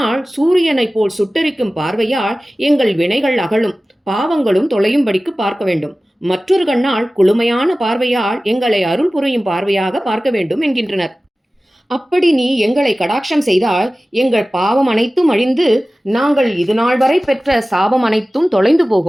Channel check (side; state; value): both; normal; correlation 0.96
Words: சூரியனை போல் சுட்டரிக்கும் பார்வையால் எங்கள் வினைகள் அகலும், பாவங்களும் தொலையும்படிக்கு பார்க்க வேண்டும். மற்றொரு கண்ணால் குளுமையான பார்வையால் எங்களை அருள் புரியும் பார்வையாக பார்க்க வேண்டும் என்கின்றனர். அப்படி நீ எங்களை கடாட்சம் செய்தால் எங்கள் பாவம் அனைத்தும் அழிந்து நாங்கள் இது நாள் வரை பெற்ற சாபம் அனைத்தும் தொலைந்து